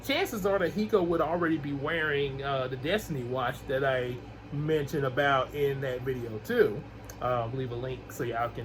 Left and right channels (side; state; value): both; identical; correlation 1.00